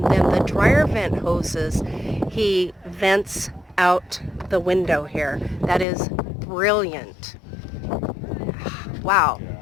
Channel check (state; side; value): drops out; right; at 5.9 s